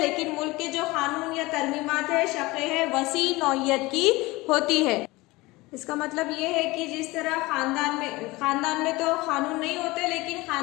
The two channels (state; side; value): quieter; right; 21.4 dB